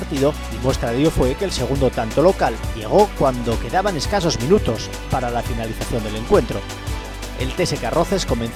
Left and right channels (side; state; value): both; identical; correlation 1.00